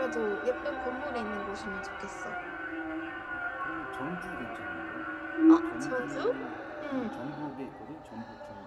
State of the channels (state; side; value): identical; both; correlation 1.00